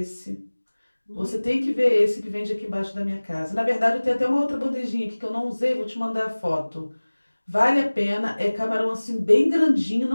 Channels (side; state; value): both; inverted; correlation -1.00